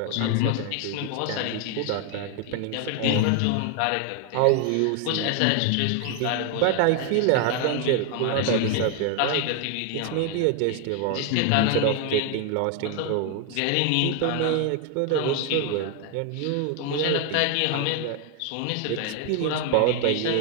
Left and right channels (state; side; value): different; both; correlation 0.01